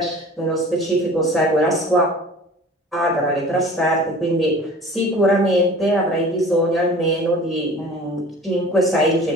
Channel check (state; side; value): normal; both; correlation 0.43